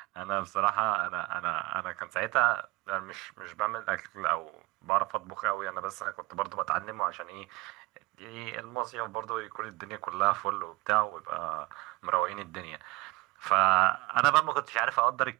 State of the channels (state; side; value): quieter; left; 22.0 dB